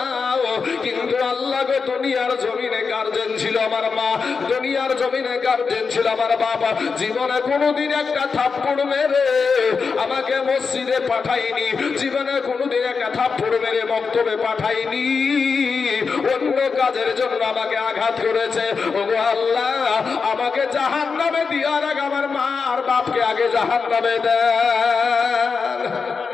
কিন্তু আল্লাহ গো দুনিয়ার জমিনে গার্জেন ছিল আমার মা, দুনিয়ার জমিনে গার্জেন ছিল আমার বাবা, জীবনে কোনোদিন একটা থাপ্পড় মেরে আমাকে মসজিদে পাঠাইনি, জীবনে কোনোদিন একটা থাপ্পড় মেরে মক্তবে পাঠাইনি, অন্য কাজের জন্য আমাকে আঘাত করেছে। ওগো আল্লাহ আমাকে জাহান্নামে দেওয়ার আগে আমার মা আর বাপকে আগে জাহান্নামে দেন।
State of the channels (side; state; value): right; quieter; 5.2 dB